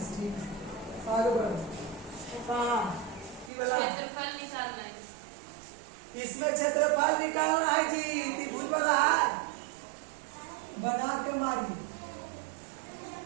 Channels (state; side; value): drops out; left; at 3.5 s